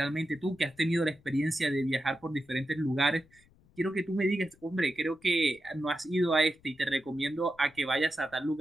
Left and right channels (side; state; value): left; noise; rumble, 30 dB below the sound